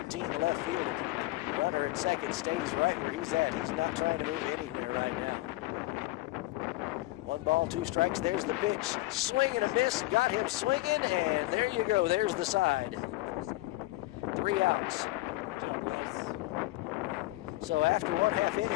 the left fielder. Runner at second stays right where he's at. He's not trying to move anywhere right now. 1 ball, 2 strikes. There's the pitch. Swing and a miss. Got him swinging, and there you go. There's the side. 3 outs. Good job, Wes. So after 1/2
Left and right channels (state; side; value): quieter; right; 18.9 dB